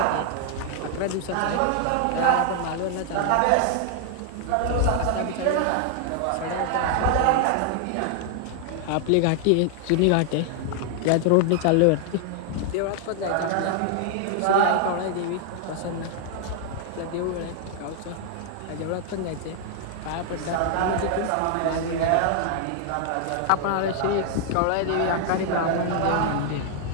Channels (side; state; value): both; different; correlation 0.00